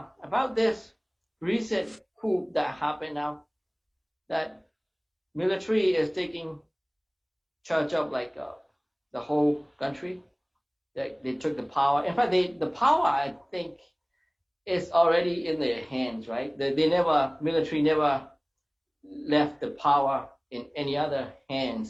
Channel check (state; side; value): identical; both; correlation 1.00